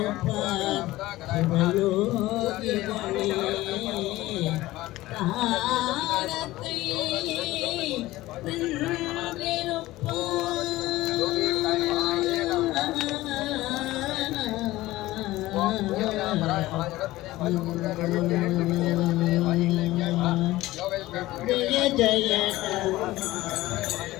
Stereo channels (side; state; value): right; quieter; 17.5 dB